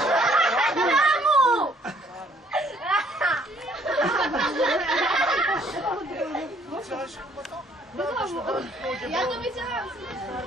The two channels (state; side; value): normal; both; correlation 0.63